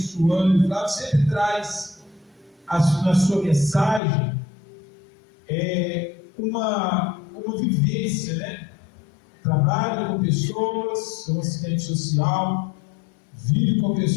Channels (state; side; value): drops out; right; at 4.0 s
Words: O Flávio sempre traz na sua mensagem uma vivência, né? Trabalha com pessoas, é um assistente social, vive com